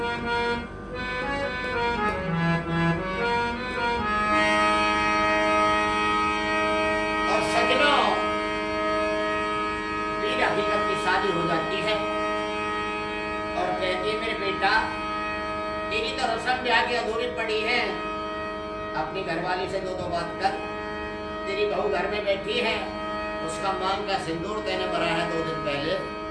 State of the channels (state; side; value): identical; both; correlation 1.00